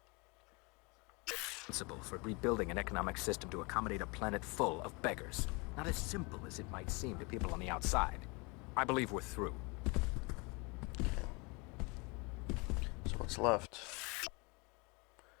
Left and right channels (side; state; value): right; quieter; 28.8 dB